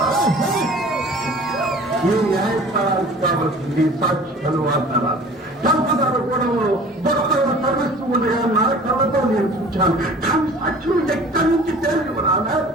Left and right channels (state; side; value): normal; both; correlation 0.45